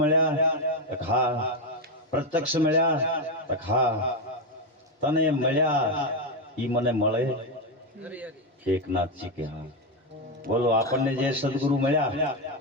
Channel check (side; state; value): both; normal; correlation 0.08